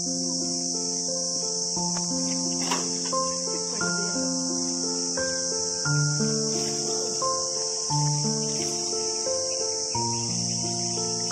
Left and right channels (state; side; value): identical; both; correlation 1.00